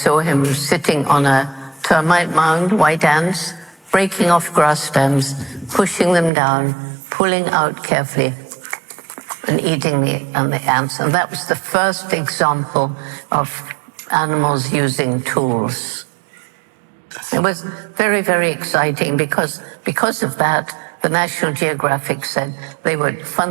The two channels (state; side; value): drops out; left; at 6.3 s